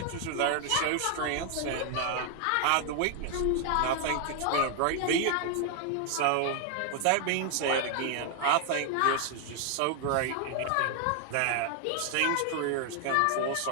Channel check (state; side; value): different; both; correlation 0.00